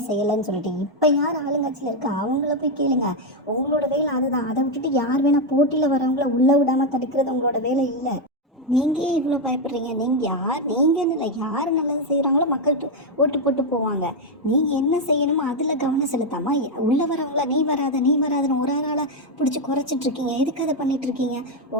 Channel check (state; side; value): normal; both; correlation 0.03